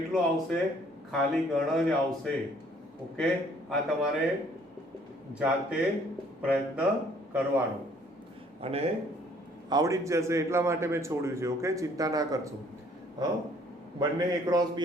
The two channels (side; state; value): both; normal; correlation 0.60